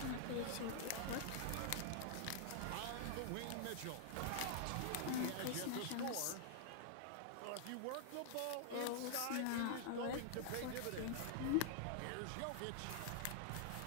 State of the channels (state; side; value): different; both; correlation -0.01